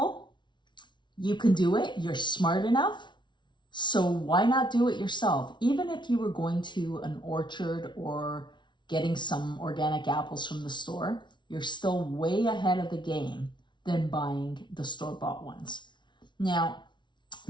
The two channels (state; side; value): late; right; 0.23 ms